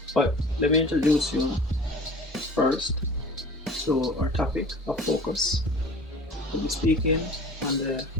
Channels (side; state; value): both; normal; correlation 0.42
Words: But let me introduce you first to our topic of focus. We'll be speaking on the